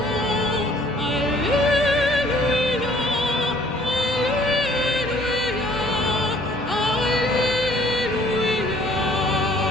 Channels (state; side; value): normal; both; correlation 0.58